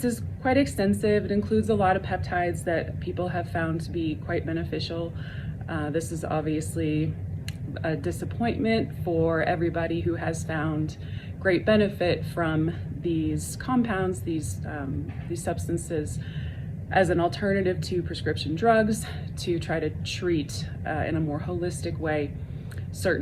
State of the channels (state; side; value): identical; both; correlation 1.00